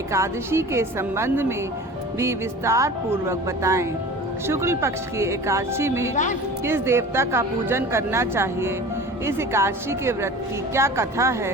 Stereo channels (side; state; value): both; normal; correlation 0.39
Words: के संबंध में भी विस्तार पूर्वक बताएं। शुक्ल पक्ष की एकादशी में किस देवता का पूजन करना चाहिए, इस एकादशी के व्रत की क्या कथा